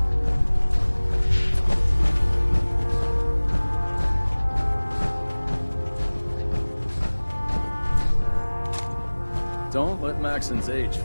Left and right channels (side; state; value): both; inverted; correlation -1.00